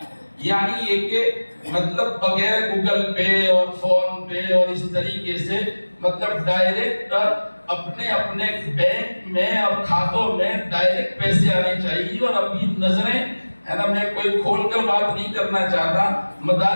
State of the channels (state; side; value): inverted; both; correlation -1.00